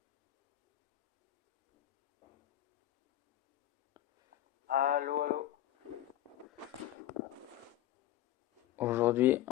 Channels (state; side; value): quieter; right; 13.2 dB